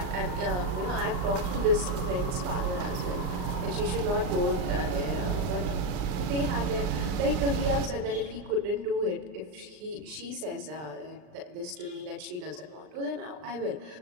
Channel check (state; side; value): late; left; 39 ms